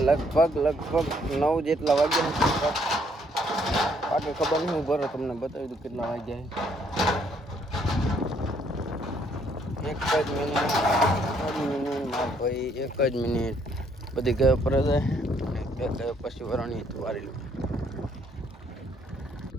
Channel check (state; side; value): normal; both; correlation 0.68